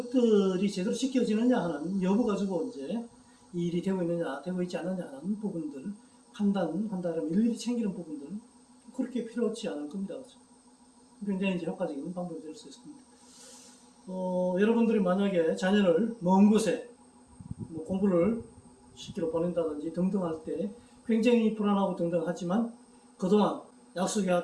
제대로 지켜지느냐 하는 여부 가지고 이제 이 일이 되고 있느냐, 되고 있지 않느냐 하는 부분들 판단한다면 일일이 챙기는 부분들 그렇게 필요하지 않을 겁니다. 굉장히 이제 효과적인 방법이 될 수 있습니다. 여러분들이 만약에 자녀를 먼 곳에 공부를 시키러 보낸다든지 등등 할 때 굉장히 불안하고 등등 하지만 그동안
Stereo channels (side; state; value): both; identical; correlation 1.00